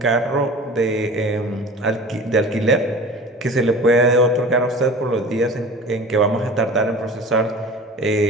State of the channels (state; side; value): normal; both; correlation 0.39